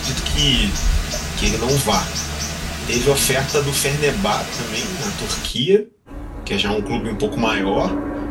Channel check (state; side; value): identical; both; correlation 1.00